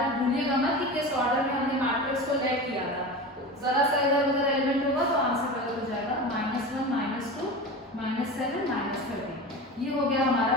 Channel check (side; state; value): both; normal; correlation 0.29